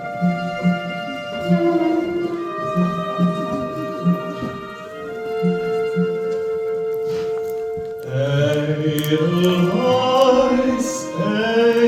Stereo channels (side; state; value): both; identical; correlation 1.00